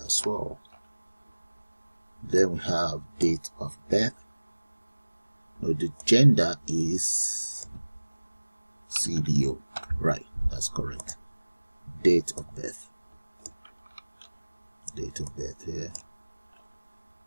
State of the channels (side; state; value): both; inverted; correlation -1.00